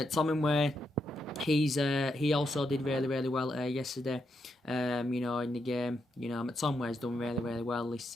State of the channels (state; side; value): normal; both; correlation 0.81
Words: he also did really, really well yesterday. In the game, McTominay's done really, really well this